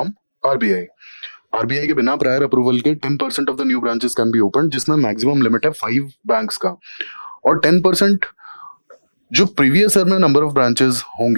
RBI. RBI के बिना प्रायर अप्रूवल के 10% of the new branches can be open, जिसमें मैक्सिमम लिमिट है 5 बैंक्स का। और 10% जो प्रीवियस ईयर में नंबर ऑफ ब्रांचेस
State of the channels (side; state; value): both; inverted; correlation -1.00